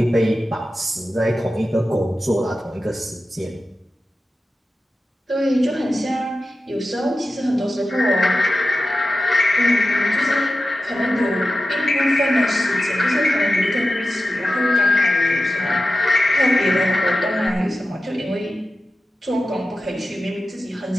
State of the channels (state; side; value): normal; both; correlation 0.93